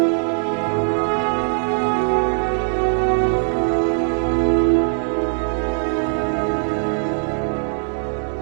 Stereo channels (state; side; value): silent; left; digital silence